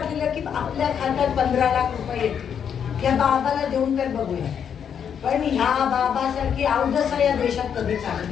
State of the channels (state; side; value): quieter; right; 7.9 dB